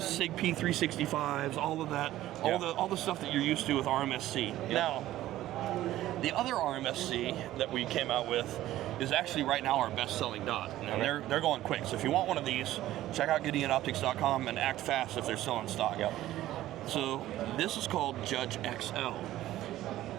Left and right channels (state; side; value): quieter; left; 14.5 dB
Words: SIG P365s, all of that, all the stuff that you're used to with RMSC. Yep. Now, the other RMSC that we came out with is actually right now our best-selling dot, and they're going quick. So if you want one of these, check out GideonOptics.com and act fast if they're still in stock. Yep. So this is called Judge XL.